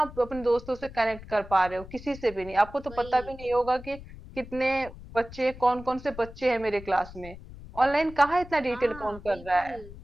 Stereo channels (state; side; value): noise; left; rumble, 16 dB below the sound